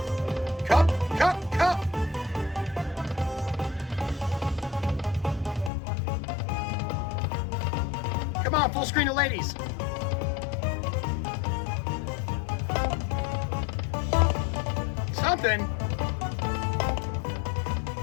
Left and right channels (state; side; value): drops out; right; at 5.7 s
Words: Cup. Come on, full screen of ladies. Something.